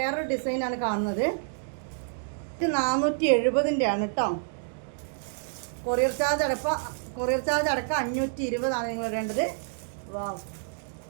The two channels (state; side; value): silent; left; digital silence